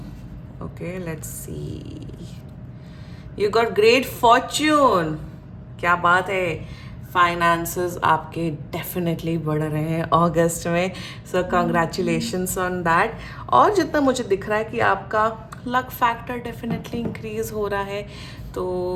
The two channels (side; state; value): both; identical; correlation 1.00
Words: Okay, let's see. You got great Fortune. क्या बात है. फाइनेंसेस आपके डेफिनेटली बढ़ रहे हैं अगस्त में. सो कंग्रेचुलेशंस ऑन दैट. और जितना मुझे दिख रहा है कि आपका लक फैक्टर डेफिनेटली इंक्रीज हो रहा है.